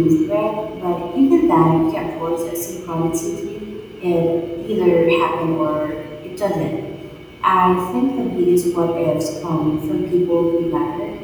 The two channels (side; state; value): both; identical; correlation 1.00